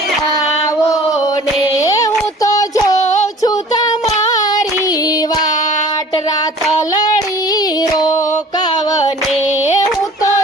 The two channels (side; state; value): both; normal; correlation 0.47